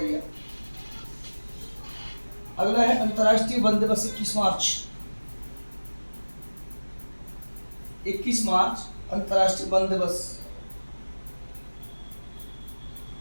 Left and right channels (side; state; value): both; inverted; correlation -1.00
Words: अगला है अंतर्राष्ट्रीय वन दिवस 21 मार्च। 21 मार्च अंतर्राष्ट्रीय वन दिवस।